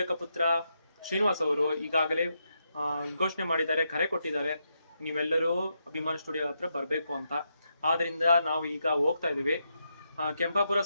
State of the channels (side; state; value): both; inverted; correlation -0.82